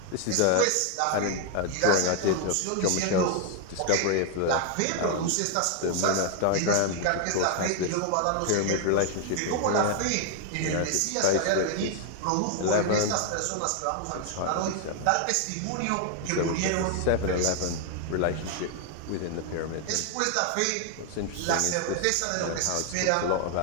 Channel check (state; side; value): different; both; correlation 0.00